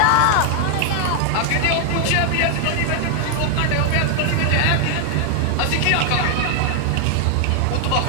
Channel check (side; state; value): both; different; correlation 0.00